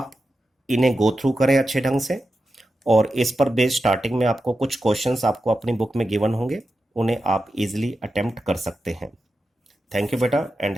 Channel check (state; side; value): normal; both; correlation 0.90